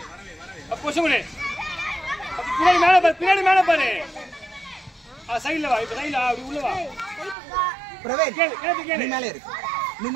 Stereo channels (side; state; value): left; drops out; at 7.4 s